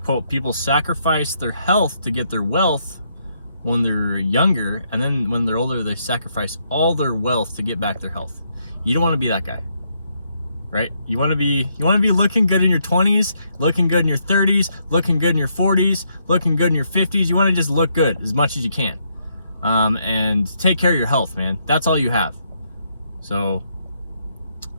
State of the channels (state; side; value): inverted; both; correlation -0.75